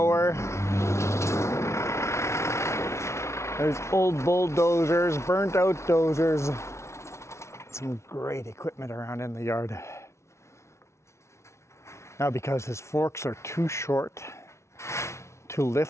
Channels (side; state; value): right; late; 0.13 ms